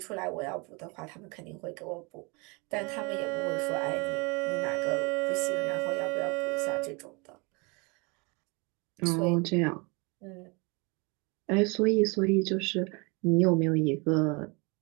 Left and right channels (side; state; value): left; quieter; 29.3 dB